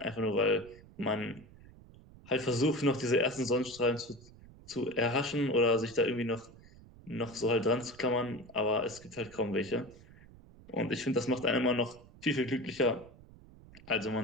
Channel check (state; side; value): noise; right; rumble, 22 dB below the sound